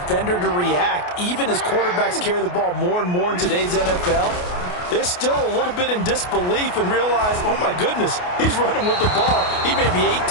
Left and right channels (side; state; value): right; late; 28 ms